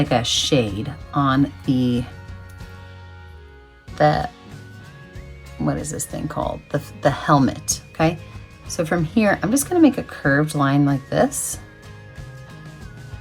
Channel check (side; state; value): both; identical; correlation 1.00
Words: a shade on the what is this thing called? The helmet, okay? So from here, I'm just gonna make a curved line like this.